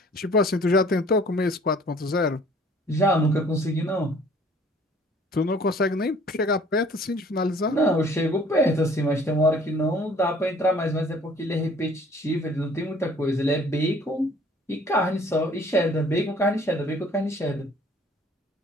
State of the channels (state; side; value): normal; both; correlation 0.55